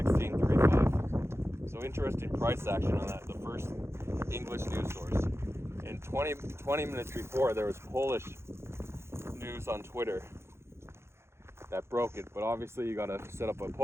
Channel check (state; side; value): late; left; 0.13 ms